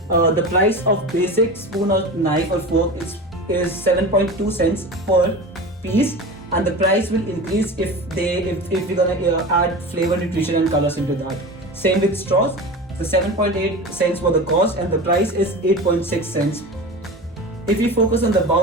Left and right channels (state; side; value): normal; both; correlation 0.30